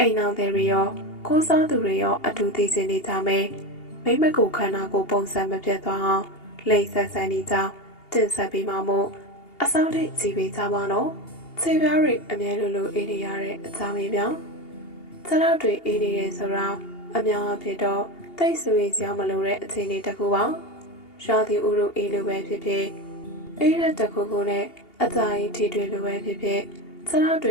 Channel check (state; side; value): late; right; 2.8 ms